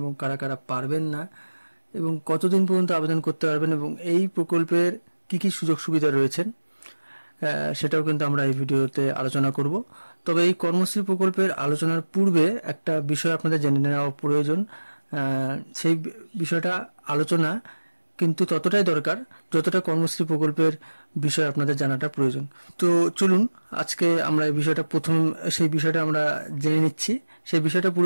কারা কারা পারবেন না, এবং কতদিন পর্যন্ত আবেদন করতে পারবেন, এবং এই প্রকল্পের কি কি সুযোগ সুবিধা রয়েছেন সেটাও কিন্তু আমরা এই ভিডিওতে আলোচনা করব। তবে এই কর্মশ্রী প্রকল্পের আলোচনার পূর্বে একটা বিষয় আপনাদের জেনে নেওয়া প্রয়োজন। সেই বিষয়টা আলোচনা কিন্তু ততটাই দরকার যতটা কর্মশ্রী প্রকল্পের বিষয় আপনাদের জানাটা প্রয়োজন। তো চলুন আজকে আমরা এই বিষয়টা সেই বিষয়টা আমরা জেনে নিচ্ছি। সেই বিষয়টা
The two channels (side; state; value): both; inverted; correlation -1.00